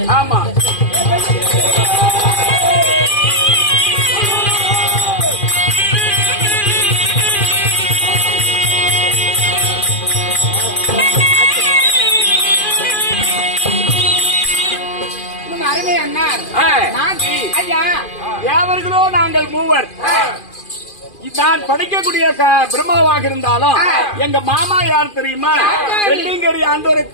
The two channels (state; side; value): late; right; 2.4 ms